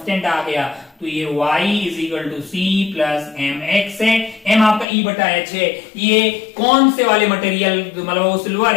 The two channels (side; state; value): right; drops out; at 4.9 s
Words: आ गया, तो ये y is equal to C plus M X है। m आपका E बटा एच है। ये कौन से वाले मटेरियल, मतलब वो सिल्वर